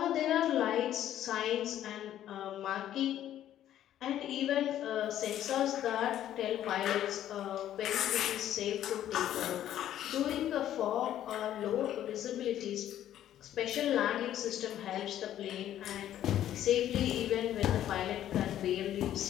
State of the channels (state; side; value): quieter; right; 11.7 dB